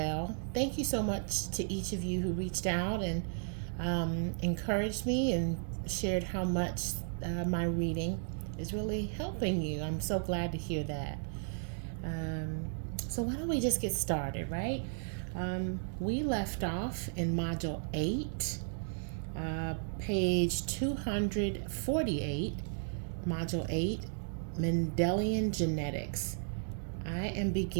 Thank you so much to each of you who reached out and encouraged me and shared how much my reading is really helping you. I'm so glad to hear that. Um, so, why don't we just get started, right? We left off in Module 8, page 248, Module 8, Mendelian Genetics. I am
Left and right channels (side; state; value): left; silent; digital silence